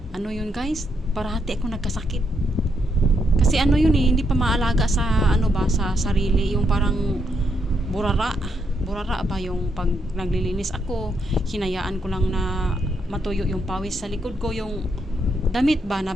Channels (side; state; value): both; normal; correlation 0.77